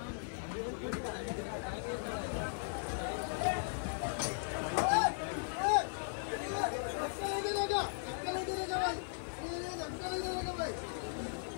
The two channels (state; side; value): silent; right; 53 dB below the other